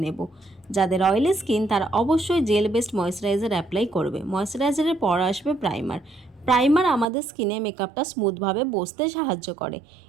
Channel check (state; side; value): drops out; left; at 7.1 s